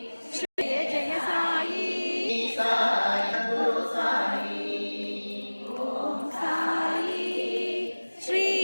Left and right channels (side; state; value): both; inverted; correlation -1.00